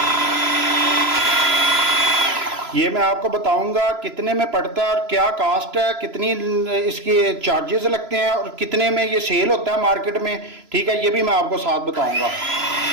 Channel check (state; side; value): late; left; 3.0 ms